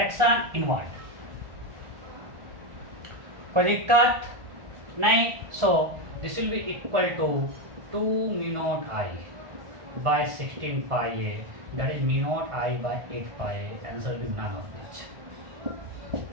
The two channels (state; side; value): late; left; 1.5 ms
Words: inward, कोई दिक्कत नहीं। So this will be equal to 2 mu not I by 16 pi A, that is mu not I by 8 pi A. Answer will be none of this.